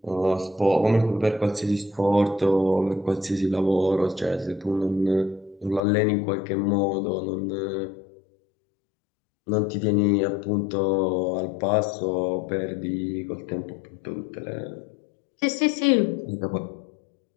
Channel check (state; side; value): drops out; right; at 5.8 s